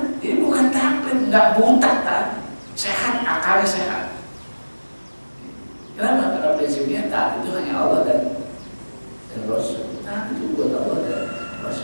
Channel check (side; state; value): both; inverted; correlation -1.00